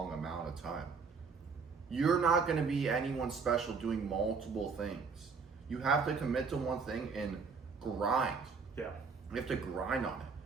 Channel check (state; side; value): quieter; left; 5.1 dB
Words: amount of time. You're not gonna be anyone special doing multiple things. You have to commit to one thing and grind. Yeah. You have to grind on it.